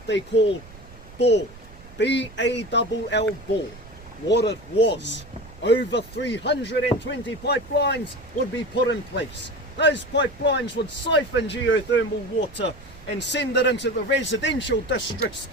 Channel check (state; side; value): noise; right; rumble, 19 dB below the sound